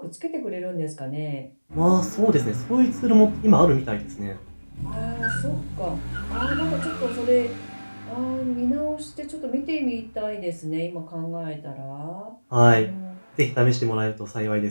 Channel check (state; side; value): inverted; both; correlation -1.00